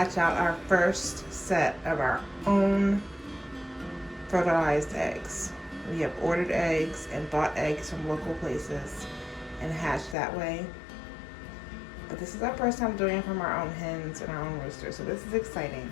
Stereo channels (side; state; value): right; drops out; at 10.2 s